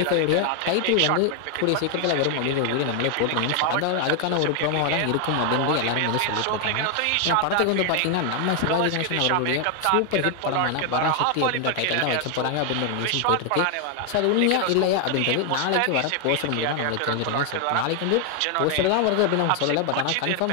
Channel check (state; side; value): different; both; correlation 0.00